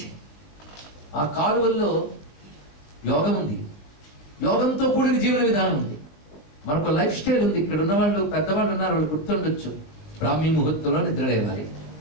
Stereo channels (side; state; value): right; late; 20 ms